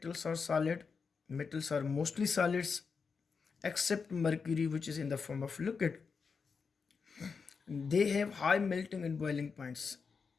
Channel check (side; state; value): right; quieter; 5.3 dB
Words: are solid. Metals are mostly solids except mercury, which is in the form of liquid. They have high melting and boiling points.